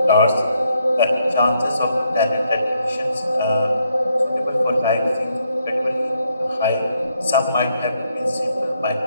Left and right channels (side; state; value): both; inverted; correlation -0.75